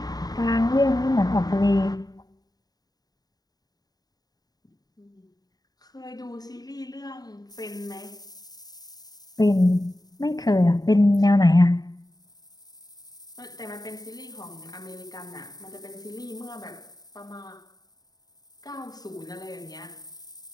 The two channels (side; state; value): right; late; 0.19 ms